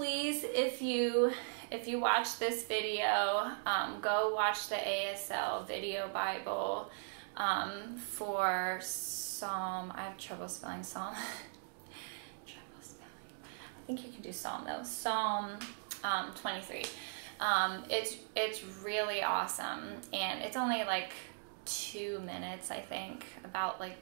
if you watch this video, go watch the ASL video Bible for Psalm. I have trouble spelling Psalm. I think you can do Psalm though. Psalm 23. It's really awesome, and it's only like 2 minutes, I think, about like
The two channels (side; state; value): left; silent; digital silence